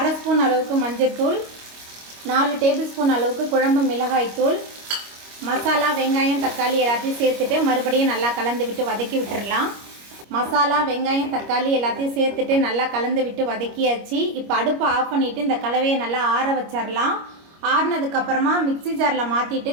ஸ்பூன் அளவுக்கு மஞ்சள்தூள், 4 டேபிள் ஸ்பூன் அளவுக்கு குழம்பு மிளகாய் தூள், மசாலா வெங்காயம் தக்காளி எல்லாத்தையும் சேர்த்துட்டு மறுபடியும் நல்லா கலந்து விட்டு வதக்கி விட்டுடலாம். மசாலா வெங்காயம் தக்காளி எல்லாத்தையும் சேர்த்துட்டு நல்லா கலந்து விட்டு வதக்கியாச்சு. இப்போ அடுப்பை ஆஃப் பண்ணிவிட்டு இந்த கலவையை நல்லா ஆற வச்சிடலாம். ஆறினதுக்கப்புறமா மிக்சி ஜாரில் மாற்றிட்டு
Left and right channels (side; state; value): left; late; 25 ms